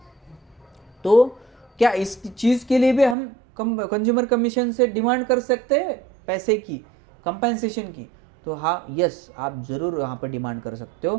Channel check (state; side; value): drops out; left; at 3.2 s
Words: तो क्या इस चीज़ के लिए भी हम कंज्यूमर कमीशन से डिमांड कर सकते हैं पैसे की, कंपेंसेशन की? तो हाँ, यस, आप ज़रूर वहाँ पर डिमांड कर सकते